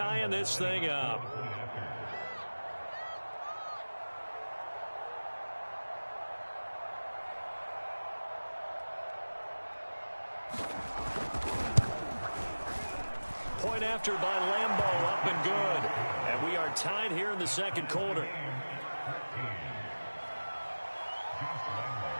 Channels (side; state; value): both; inverted; correlation -1.00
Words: this thing up. Point after by Lambeau, up and good. And we are tied here in the second quarter.